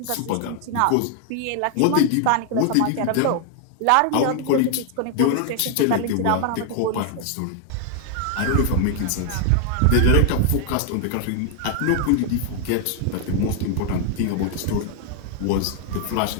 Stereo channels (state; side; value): different; both; correlation 0.00